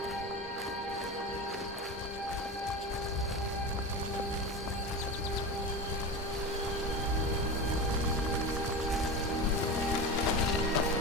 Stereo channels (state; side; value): normal; both; correlation 0.25